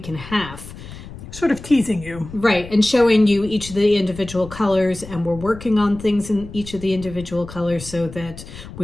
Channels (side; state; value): left; noise; rumble, 14 dB below the sound